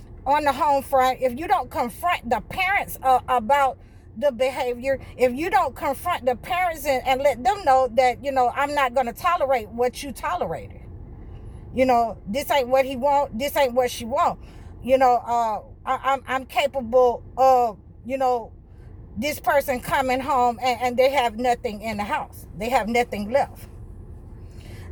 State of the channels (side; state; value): both; identical; correlation 1.00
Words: on the home front, if you don't confront the parents about the behavior, if you don't confront the parents and let them know that, I'm not going to tolerate what you tolerated. This ain't what he want. This ain't what she want. I'm capable of, this person coming home and they have nothing in the house. They have nothing left.